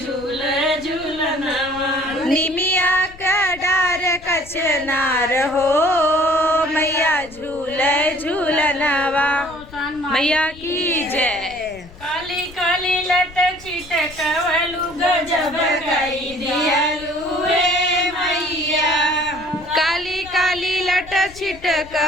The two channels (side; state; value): left; noise; rumble, 20 dB below the sound